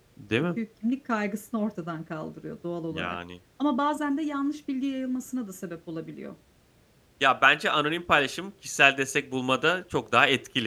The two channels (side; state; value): both; identical; correlation 1.00